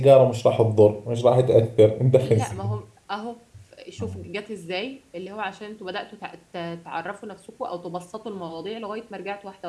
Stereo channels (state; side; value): identical; both; correlation 1.00